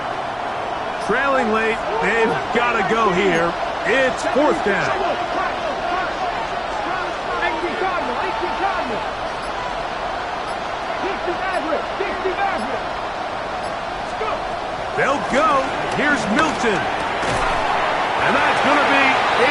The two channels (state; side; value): identical; both; correlation 1.00